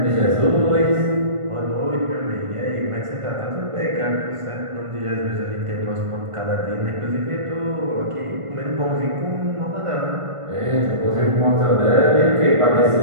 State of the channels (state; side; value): late; left; 1.5 ms